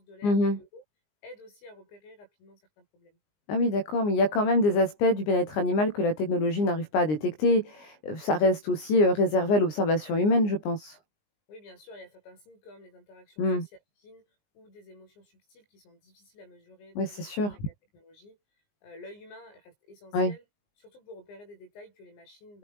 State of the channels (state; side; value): late; right; 20 ms